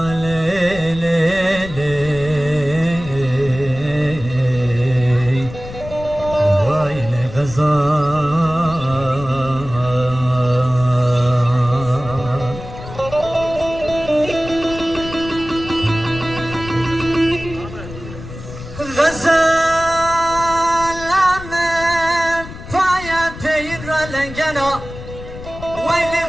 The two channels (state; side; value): noise; left; rumble, 13 dB below the sound